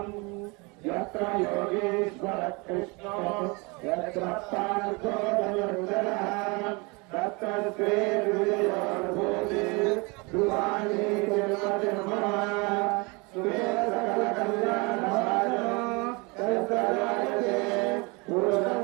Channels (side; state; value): left; quieter; 28.4 dB